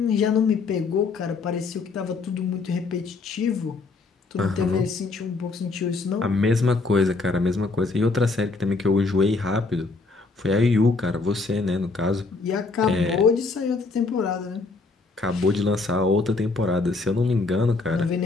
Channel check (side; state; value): right; quieter; 3.9 dB